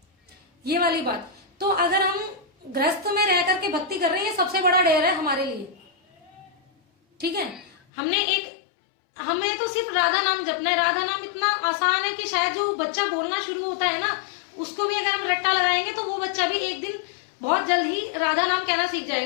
ये वाली बात। तो अगर हम गृहस्थ में रह करके भक्ति कर रहे हैं, सबसे बड़ा डेर है हमारे लिए, ठीक है। हमें तो सिर्फ राधा नाम जपना है। राधा नाम इतना आसान है कि शायद जो बच्चा बोलना शुरू होता है ना, उसको भी अगर हम रट्टा लगाएंगे तो वो बच्चा भी एक दिन बहुत जल्द ही राधा नाम कहना सीख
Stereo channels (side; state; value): right; drops out; at 7.8 s